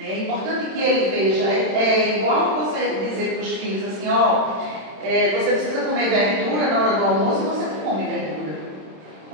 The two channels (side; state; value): left; late; 27 ms